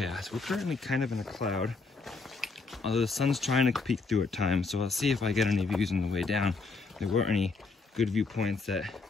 We're currently kind of in a cloud, although the sun's trying to peek through at times, so I'll see if I get any views on the way down. There weren't any good viewpoints that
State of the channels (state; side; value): quieter; right; 4.1 dB